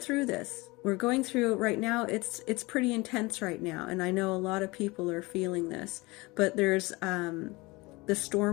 through this. We're going through right now. It's pretty intense right now, and I know a lot of people are feeling this. But there's the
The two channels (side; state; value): right; quieter; 23.6 dB